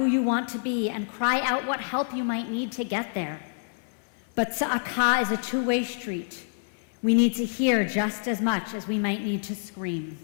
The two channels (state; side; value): silent; right; 60 dB below the other